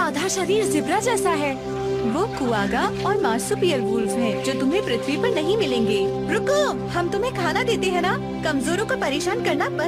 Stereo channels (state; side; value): identical; both; correlation 1.00